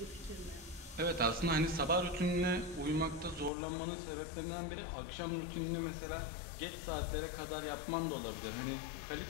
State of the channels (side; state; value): right; drops out; at 3.5 s